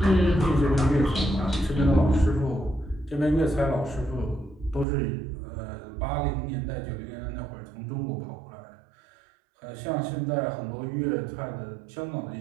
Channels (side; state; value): left; drops out; at 4.9 s